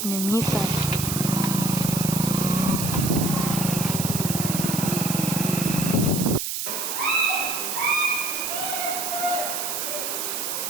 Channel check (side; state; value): right; noise; hiss, 2 dB below the sound